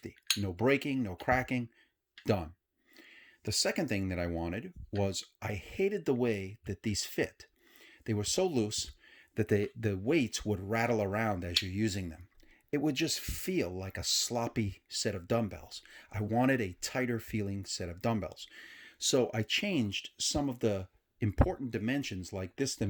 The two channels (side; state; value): both; identical; correlation 1.00